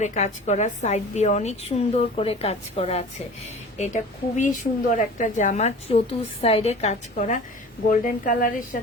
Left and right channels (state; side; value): normal; both; correlation 0.40